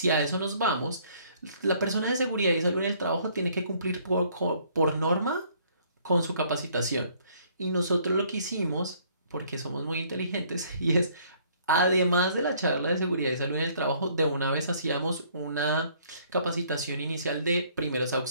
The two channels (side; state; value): both; inverted; correlation -0.62